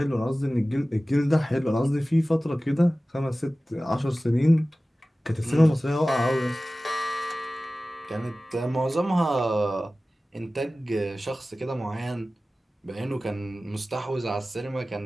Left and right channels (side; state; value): both; normal; correlation 0.97